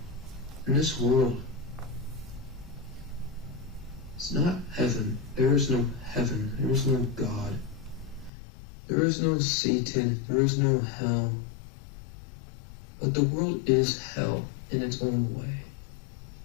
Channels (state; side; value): drops out; right; at 8.3 s